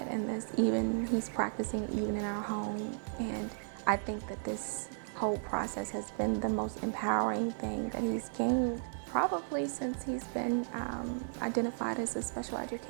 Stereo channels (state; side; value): silent; left; digital silence